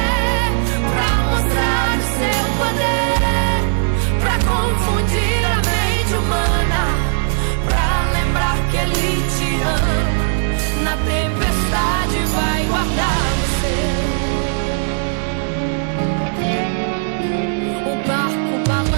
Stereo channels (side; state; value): left; silent; 67 dB below the other